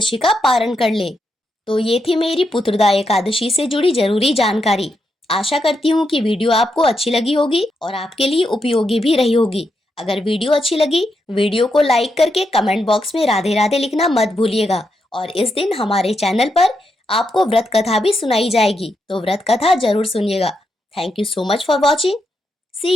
का पारण कर ले। तो ये थी मेरी पुत्रदा एकादशी से जुड़ी जरूरी जानकारी। आशा करती हूँ कि वीडियो आपको अच्छी लगी होगी और आपके लिए उपयोगी भी रही होगी। अगर वीडियो अच्छी लगी, वीडियो को लाइक करके कमेंट बॉक्स में राधे राधे लिखना मत भूलिएगा। और इस दिन हमारे चैनल पर आपको व्रत कथा भी सुनाई जाएगी, तो व्रत कथा जरूर सुनिएगा। Thank you so much for watching.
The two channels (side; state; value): both; normal; correlation 0.83